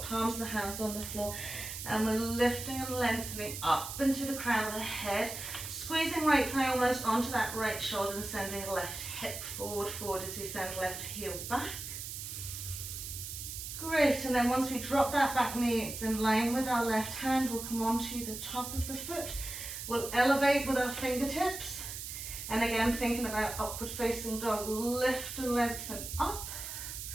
palms of the hands on the floor. And we're lifting and lengthening up into the crown of the head. Squeezing right thigh almost onto that right shoulder and sending left hip forward as we send left heel back. Great, and then once we drop that back knee, it's in line with our left hand, we'll come onto the top of the foot. We'll elevate with our fingertips. And again, thinking about upward facing dog, lift and lengthen up.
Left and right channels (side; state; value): right; noise; hiss, 7 dB below the sound